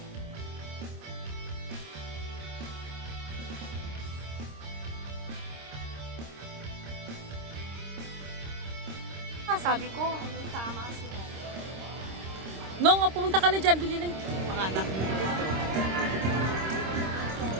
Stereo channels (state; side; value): late; left; 26 ms